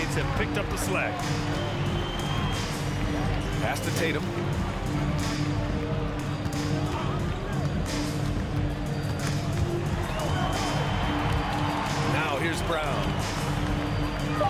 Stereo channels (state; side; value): identical; both; correlation 1.00